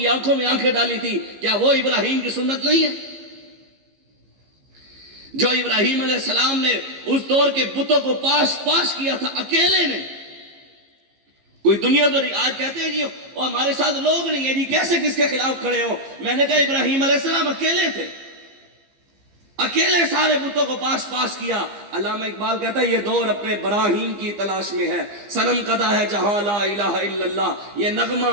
آنکھوں میں آنکھیں ڈالی تھی، کیا وہ ابراہیم کی سنت نہیں ہے؟ جو ابراہیم علیہ السلام نے اس دور کے بتوں کو پاش کیا تھا اکیلے نے، کوئی دنیا تو نہیں۔ آج کہتے ہیں جی اور ہمارے ساتھ لوگ نہیں ہیں جی، کیسے کس کے خلاف کھڑے ہو؟ میں نے کہا ابراہیم علیہ السلام اکیلے تھے، اکیلے سارے بتوں کو پاش کیا۔ علامہ اقبال کہتا ہے یہ دور اپنے براہین کی تلاش میں ہے، صنم کدا ہے جہاں لا الہ الا اللہ، یہ نغمہ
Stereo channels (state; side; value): late; left; 15 ms